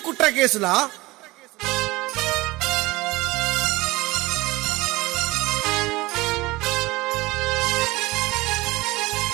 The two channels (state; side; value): quieter; left; 20.9 dB